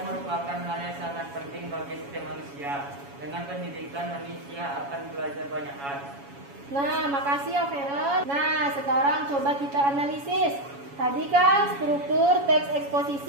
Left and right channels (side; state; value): left; late; 7.2 ms